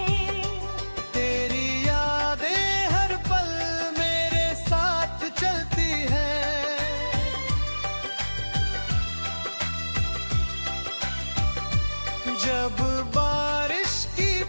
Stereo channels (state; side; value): inverted; both; correlation -1.00